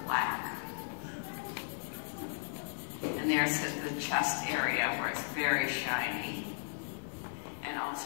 black. And there's the chest area where it's very shiny. And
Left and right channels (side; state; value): right; silent; digital silence